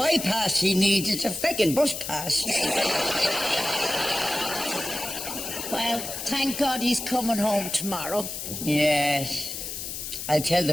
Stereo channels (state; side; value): noise; left; hiss, 6 dB below the sound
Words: he needs, it's a feckin' bus pass. Well, thank God he's coming home tomorrow. Yes. I'll tell the